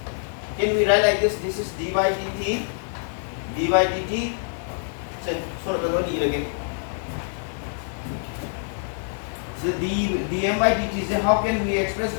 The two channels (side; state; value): right; silent; digital silence